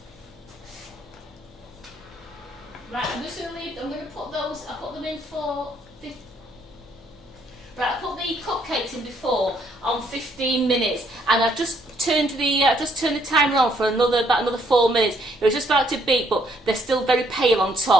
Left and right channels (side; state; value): both; normal; correlation 0.69